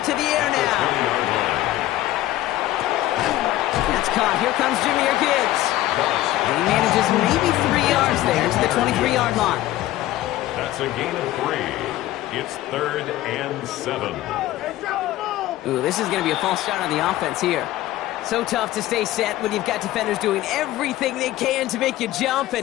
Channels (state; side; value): quieter; right; 15.2 dB